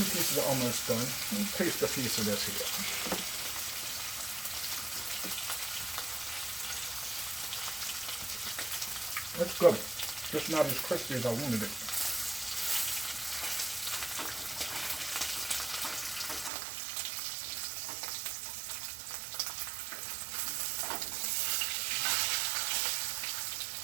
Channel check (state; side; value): drops out; left; at 16.5 s